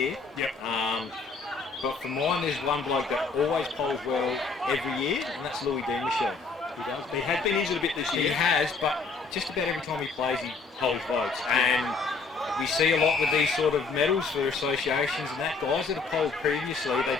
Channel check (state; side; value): quieter; right; 4.4 dB